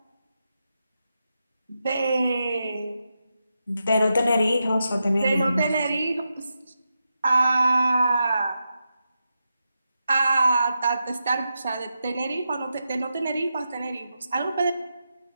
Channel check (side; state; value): both; inverted; correlation -0.87